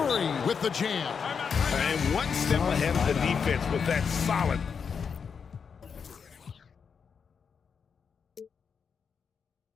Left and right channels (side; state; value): right; quieter; 6.3 dB